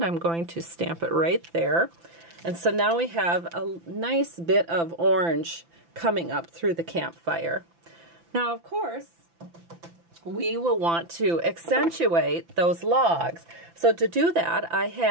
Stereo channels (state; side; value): late; left; 5.9 ms